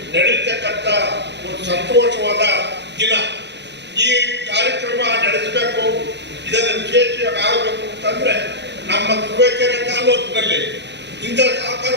ನಡೆಯತಕ್ಕಂಥ ಒಂದು ಸಂತೋಷವಾದ ದಿನ. ಈ ಕಾರ್ಯಕ್ರಮ ನಡೆಸಬೇಕು, ಇದನ್ನು ವಿಶೇಷವಾಗಿ ಆಗಬೇಕು ಅಂತಂದ್ರೆ ನಮ್ಮ ತುರುವೇಕೆರೆ ತಾಲೂಕಿನಲ್ಲಿ ಇಂಥ ಸಹಕಾರ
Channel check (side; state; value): left; late; 0.51 ms